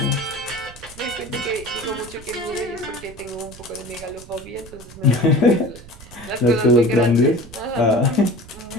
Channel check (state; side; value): noise; right; rumble, 18 dB below the sound